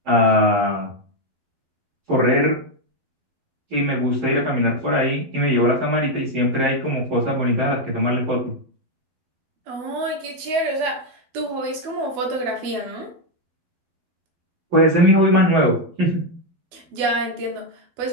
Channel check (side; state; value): left; late; 12 ms